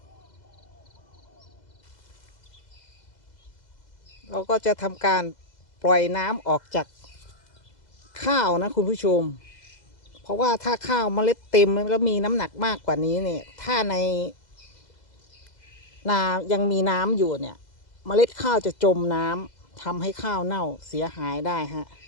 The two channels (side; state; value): right; late; 2.0 ms